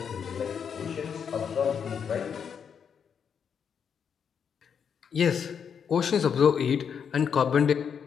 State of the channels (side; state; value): right; quieter; 7.2 dB